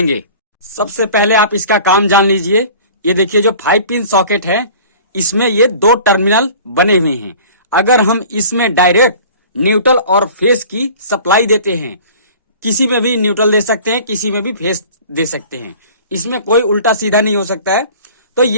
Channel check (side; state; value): both; inverted; correlation -0.44